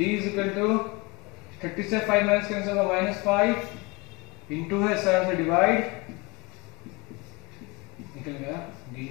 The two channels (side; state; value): right; quieter; 26.3 dB